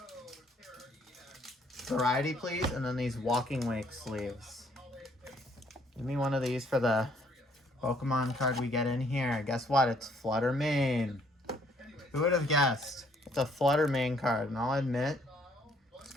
Variety, please, and then these Walking Wake sleeves. Give me one of these for the Pokemon card we get in here. Guess what? It's Flutter Mane. Who would have guessed? It's a Flutter Mane card, and I'll admit, this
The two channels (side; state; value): both; normal; correlation 0.65